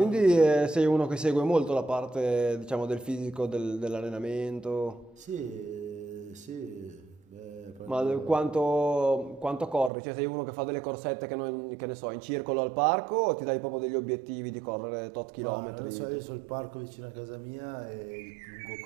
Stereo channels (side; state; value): left; drops out; at 9.9 s